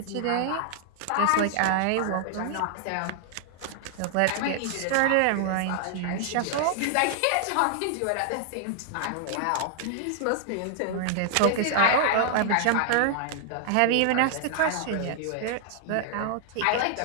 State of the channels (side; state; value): both; different; correlation 0.00